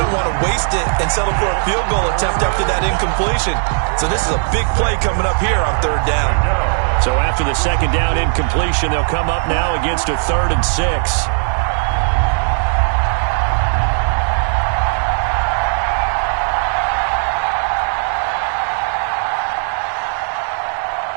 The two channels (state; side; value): silent; left; 56 dB below the other